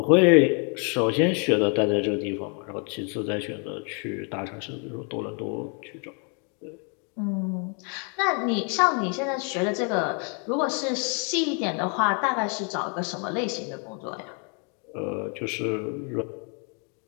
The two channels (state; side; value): quieter; right; 37.8 dB